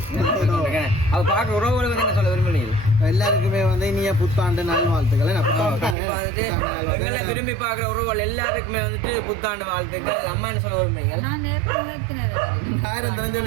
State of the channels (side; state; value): left; drops out; at 6.0 s